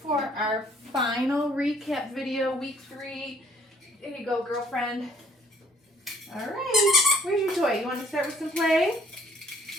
for our final recap video, week 3. There you go, girlfriend. All right, where's your toy? You want to start with some play?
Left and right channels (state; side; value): normal; both; correlation 0.60